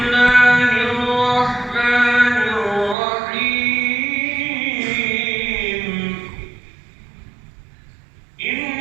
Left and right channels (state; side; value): drops out; left; at 3.0 s